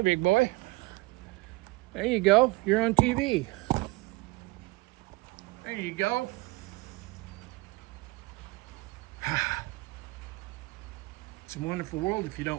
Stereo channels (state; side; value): quieter; left; 23.4 dB